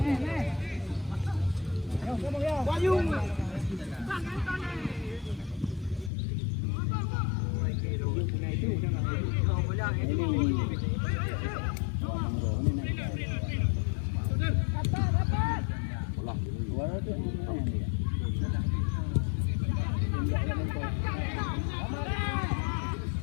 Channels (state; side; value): drops out; right; at 6.1 s